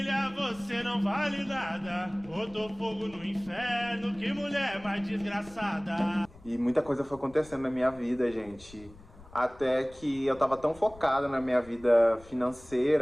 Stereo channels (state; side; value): noise; left; rumble, 22 dB below the sound